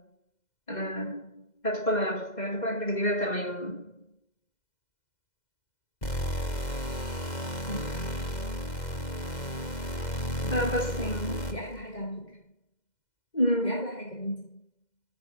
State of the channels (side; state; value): right; late; 2.0 ms